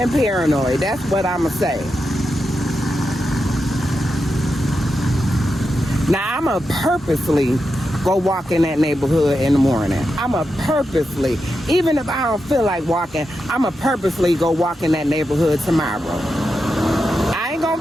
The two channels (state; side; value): normal; both; correlation 0.88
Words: paranoid. That's what I'ma say. Now I'ma purposely go walk in that neighborhood in the morning. I'ma purposely, even if I don't feel like walking, I'ma purposely go walk in that neighborhood tomorrow. I ain't